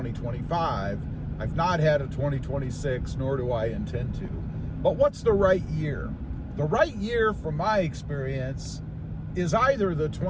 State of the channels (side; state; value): both; identical; correlation 1.00